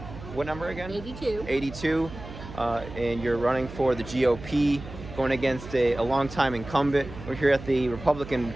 what number again? 82. 82, and you're running for the GOP, going against a longtime incumbent. We're here at the Republican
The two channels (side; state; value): right; noise; hum, 13 dB below the sound